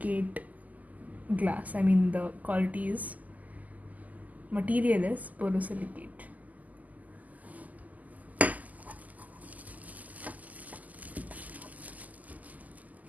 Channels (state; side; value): late; left; 0.078 ms